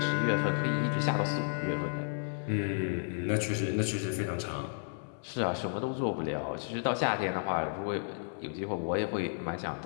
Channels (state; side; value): silent; right; 56 dB below the other